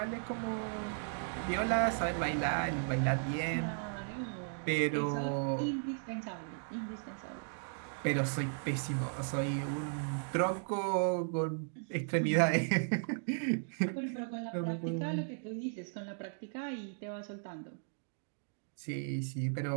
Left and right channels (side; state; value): left; silent; digital silence